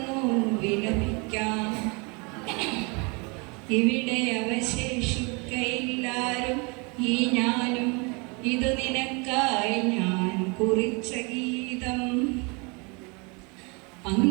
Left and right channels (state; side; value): quieter; left; 30.5 dB